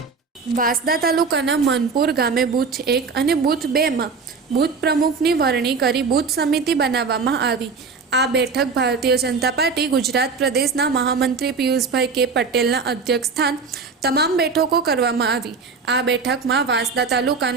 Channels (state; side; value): quieter; left; 4.8 dB